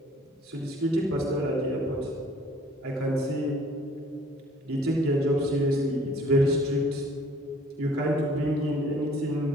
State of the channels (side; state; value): both; normal; correlation 0.55